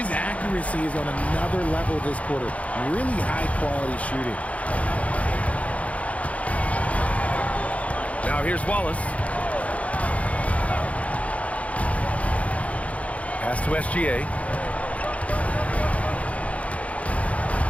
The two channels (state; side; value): late; right; 0.066 ms